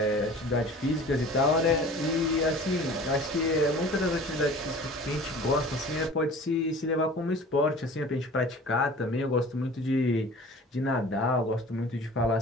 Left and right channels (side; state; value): both; normal; correlation 0.43